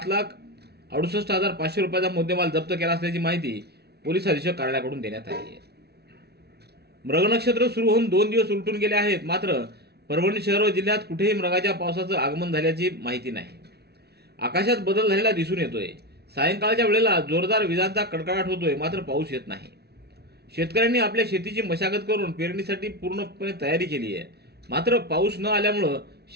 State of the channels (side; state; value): left; late; 0.48 ms